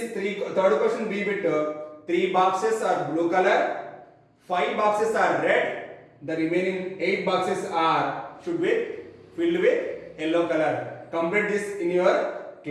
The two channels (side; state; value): both; identical; correlation 1.00